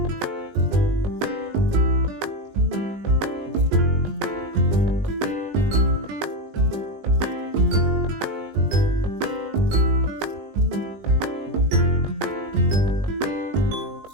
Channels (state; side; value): late; left; 20 ms